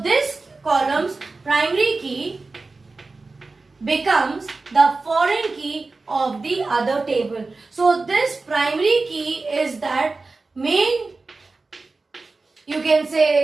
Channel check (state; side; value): quieter; left; 3.7 dB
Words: this column's primary key becomes the foreign key of the other table. So this primary key is that main, you can